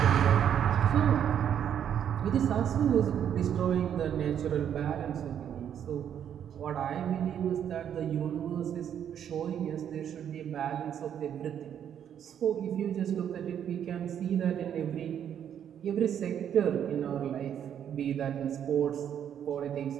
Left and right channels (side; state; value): left; quieter; 9.2 dB